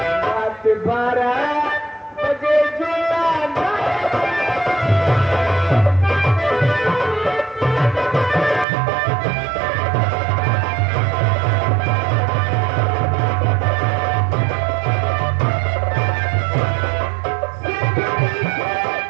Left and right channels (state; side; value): drops out; left; at 8.7 s